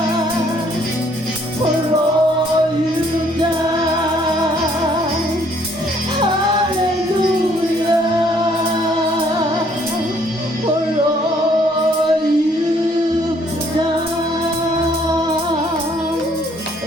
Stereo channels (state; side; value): normal; both; correlation 0.64